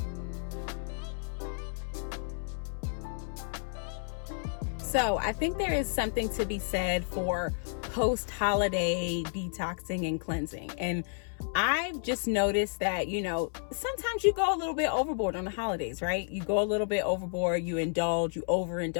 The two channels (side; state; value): right; silent; 57 dB below the other